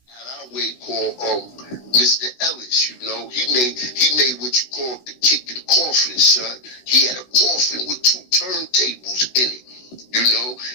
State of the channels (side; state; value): right; late; 16 ms